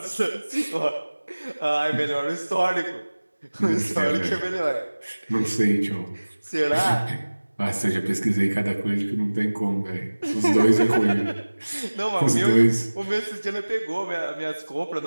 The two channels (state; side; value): inverted; both; correlation -1.00